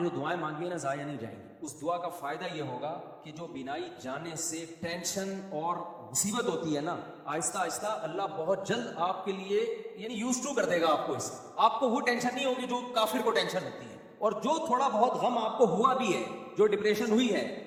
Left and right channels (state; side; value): identical; both; correlation 1.00